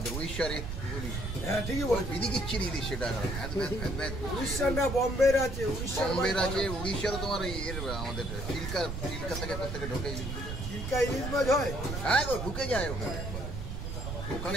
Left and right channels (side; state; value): right; noise; rumble, 5 dB below the sound